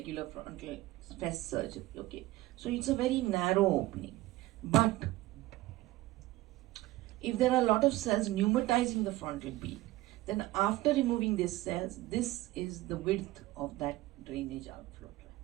frontal fist surgery. Okay. So it's a very narrow opening. But if there are a lot of cells pneumatizing the frontal beak, then after removing these cells, this is the width of that drainage outflow tract.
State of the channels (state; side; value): quieter; left; 17.6 dB